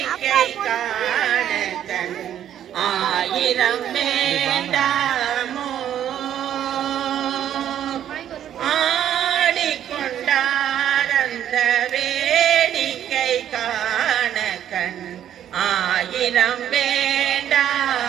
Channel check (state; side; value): quieter; left; 10.5 dB